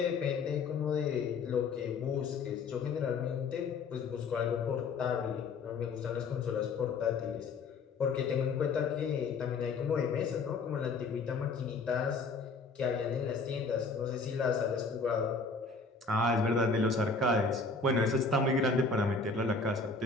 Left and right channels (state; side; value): quieter; right; 4.2 dB